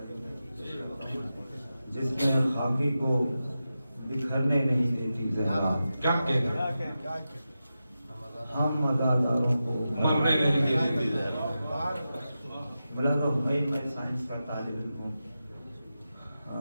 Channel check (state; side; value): inverted; both; correlation -0.91